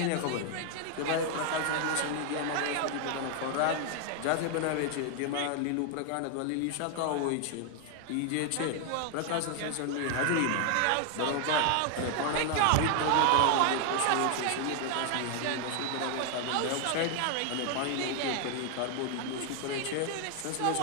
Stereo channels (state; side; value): different; both; correlation 0.00